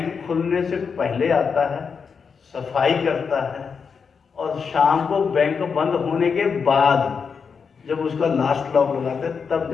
खुलने से पहले आता है, सफाई करता है, और शाम को बैंक बंद होने के बाद जब उसका लास्ट लॉक लगाते हैं तब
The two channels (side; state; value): right; quieter; 5.9 dB